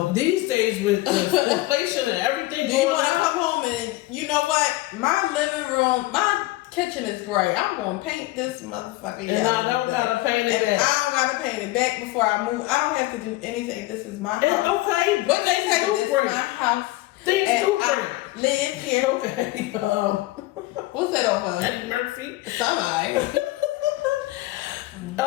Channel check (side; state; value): right; quieter; 18.9 dB